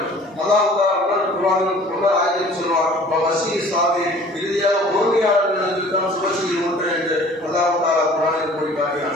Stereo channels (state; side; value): normal; both; correlation 0.49